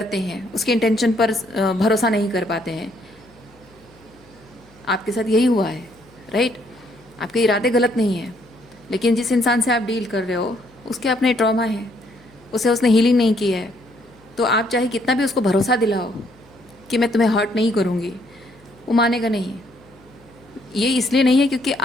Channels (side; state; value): left; noise; hum, 28 dB below the sound